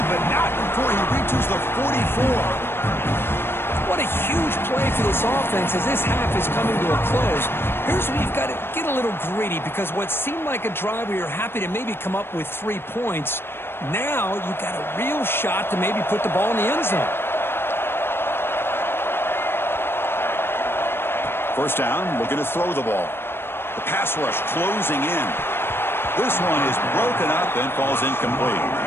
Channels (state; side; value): late; right; 0.11 ms